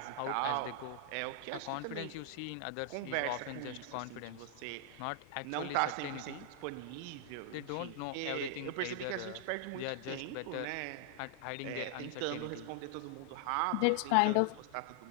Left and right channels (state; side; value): different; both; correlation -0.01